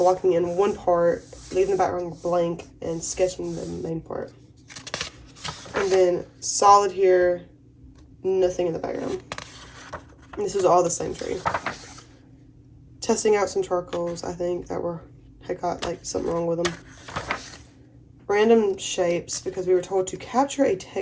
in one part, leaving the background blank, and sketching the main part. And then solid here, nothing in the background. And this is all the same tree. Testing out some charcoals, I think, that had got like something wrong with them. Random shapes, because we were told to capture a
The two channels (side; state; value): both; identical; correlation 1.00